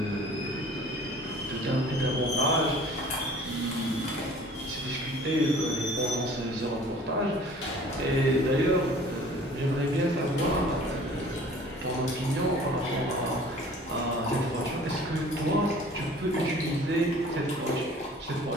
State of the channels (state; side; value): normal; both; correlation 0.49